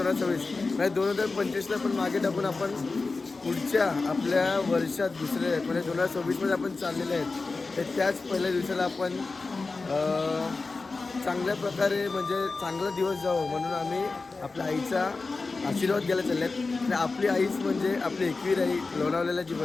म्हणजे 2025ला पण मागे टाकून आपण पुढच्या आपल्या वर्षात दुसरे म्हणजे 2026मध्ये आपण चाललेले आहेत. तर त्याच पहिल्या दिवसाला आपण चांगल्या प्रकारे म्हणजे चांगला दिवस जावं म्हणून आम्ही आपल्या आईचा आशीर्वाद घ्यायला चालले आहेत. आणि आपली आईच म्हणजे आपली एकवीर आई लोणावळ्याला जी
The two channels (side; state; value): right; quieter; 3.9 dB